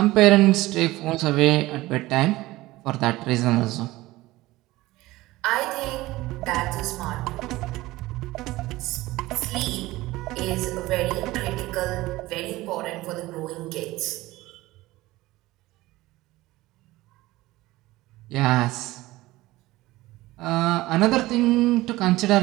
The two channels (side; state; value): left; quieter; 18.4 dB